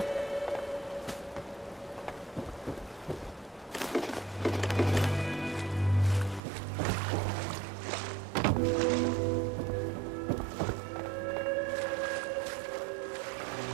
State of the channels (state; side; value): drops out; left; at 6.4 s